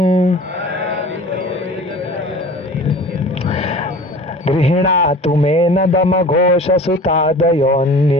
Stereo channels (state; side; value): normal; both; correlation 0.42